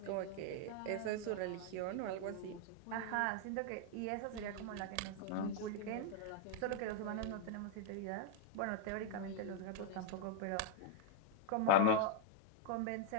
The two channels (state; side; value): different; both; correlation 0.00